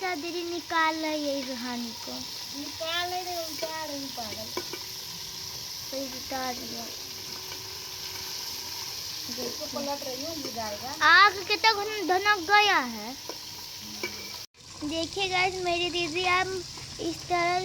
दीदी निकाल रही है रूहानी को। निकाल नहीं रही, उतार रही पागल। तो उतार दिया। इसको पलट रही हूँ, ये जाएगा। आग कितना धनक गया है। देखिए गाइस, मेरी दीदी अब इस तरह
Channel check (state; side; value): identical; both; correlation 1.00